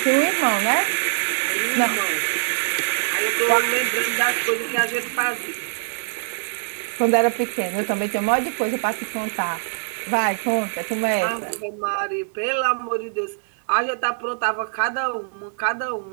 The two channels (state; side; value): silent; left; digital silence